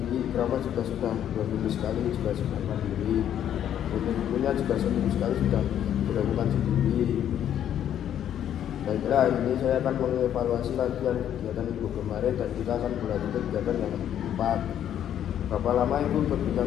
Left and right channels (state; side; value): quieter; right; 10.2 dB